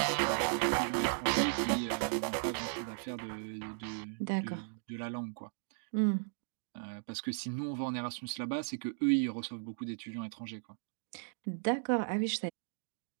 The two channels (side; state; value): left; silent; digital silence